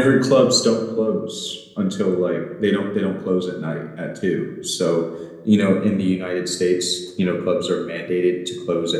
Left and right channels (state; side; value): identical; both; correlation 1.00